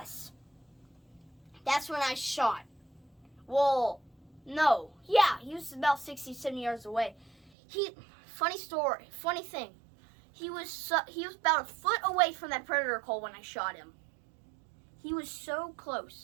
That's when I shot. Well, no. Yeah, he was about 60, 70 yards away. Funny thing. He was about a foot away from that predator call when I shot him. He was so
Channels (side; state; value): left; drops out; at 7.5 s